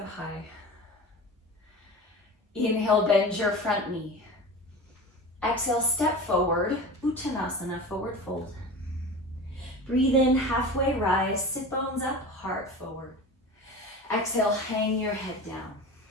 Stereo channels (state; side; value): normal; both; correlation 0.32